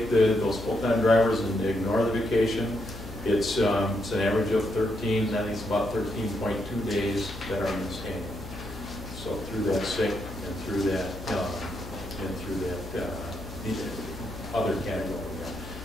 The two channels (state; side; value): noise; left; hum, 12 dB below the sound